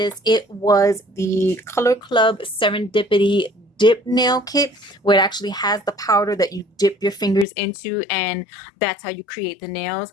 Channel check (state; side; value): drops out; right; at 7.5 s